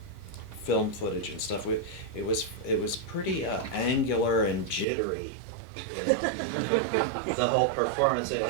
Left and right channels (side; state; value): left; drops out; at 4.9 s